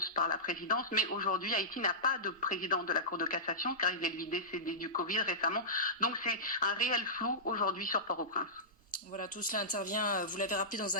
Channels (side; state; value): both; normal; correlation -0.16